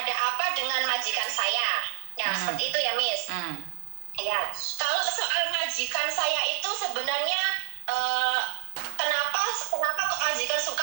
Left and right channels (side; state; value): left; silent; 60 dB below the other